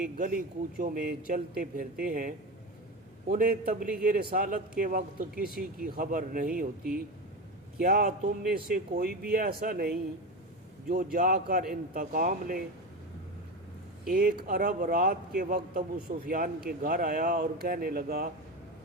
गली कूचों में चलते फिरते हैं, उन्हें तबलीग रिसालत के वक्त किसी की खबर नहीं होती। क्या तुम में से कोई भी ऐसा नहीं जो जाकर इंतकाम ले? एक अरब रात के वक्त अबू सुफियान के घर आया और कहने लगा,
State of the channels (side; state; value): both; normal; correlation 0.21